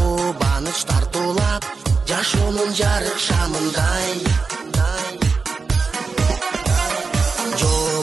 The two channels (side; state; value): left; quieter; 4.6 dB